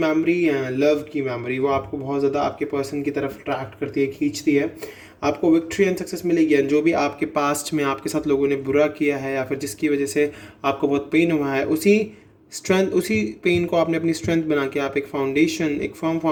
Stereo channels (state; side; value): identical; both; correlation 1.00